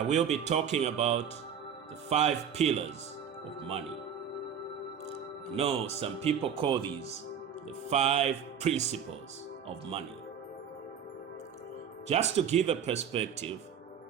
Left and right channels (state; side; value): quieter; left; 7.9 dB